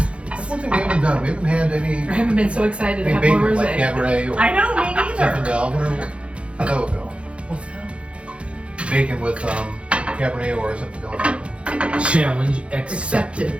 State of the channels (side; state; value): left; late; 0.060 ms